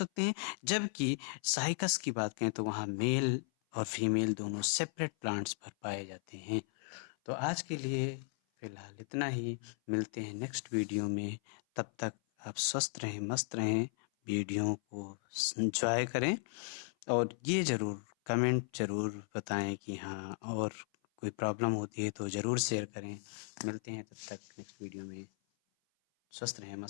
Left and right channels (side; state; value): right; silent; 54 dB below the other